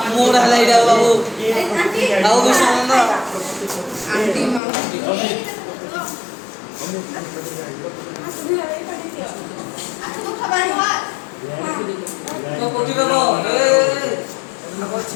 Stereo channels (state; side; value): drops out; right; at 4.6 s